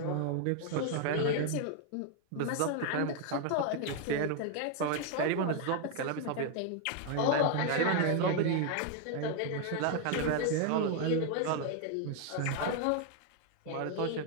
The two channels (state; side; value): different; both; correlation 0.00